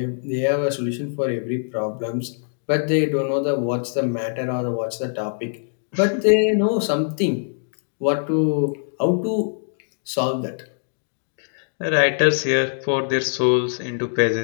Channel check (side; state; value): right; silent; digital silence